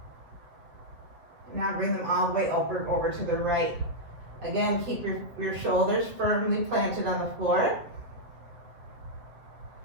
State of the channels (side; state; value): left; late; 7.7 ms